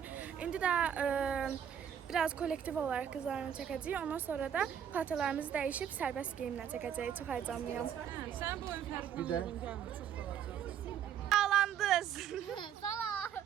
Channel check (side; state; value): left; quieter; 9.0 dB